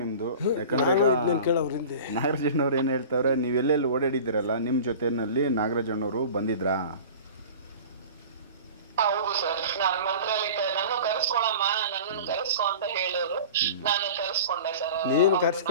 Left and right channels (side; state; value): both; inverted; correlation -0.38